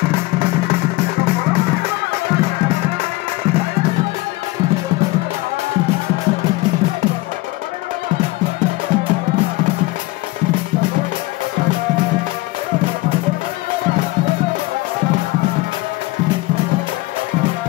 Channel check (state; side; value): quieter; right; 20.5 dB